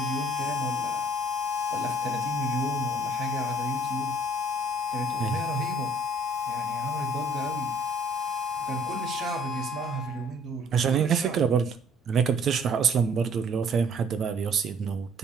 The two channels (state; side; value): normal; both; correlation 0.58